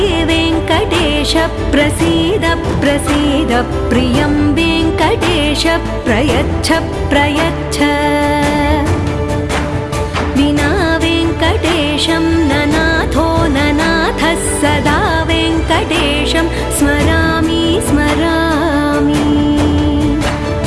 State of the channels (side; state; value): both; identical; correlation 1.00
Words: वेङ्कटेश प्रसीद प्रसीद प्रियं वेङ्कटेश प्रयच्छ प्रयच्छ।